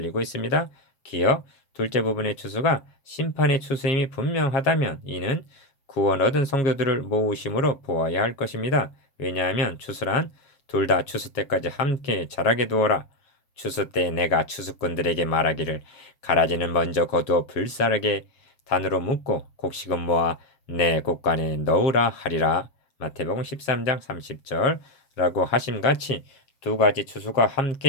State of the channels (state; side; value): late; right; 7.6 ms